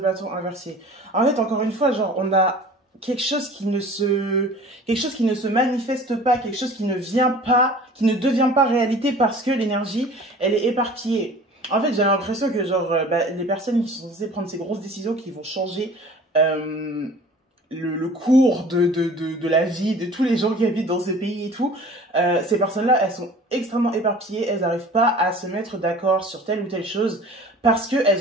inversé. En fait, encore une fois, genre, on a quelque chose qui ne se manifeste pas, quelque chose qui ne devient pas réalité parce que l'énergie, elle est éparpillée. En fait, j'ai l'impression que, genre, les personnes qui sont censées prendre ces grosses décisions qui vont changer le cours de la vie de tous les gens qui habitent dans ce pays et tout, ces personnes-là, elles sont extrêmement éparpillées, elles n'arrivent pas à se mettre d'accord sur telle ou telle chose parce qu'elles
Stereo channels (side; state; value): both; normal; correlation 0.45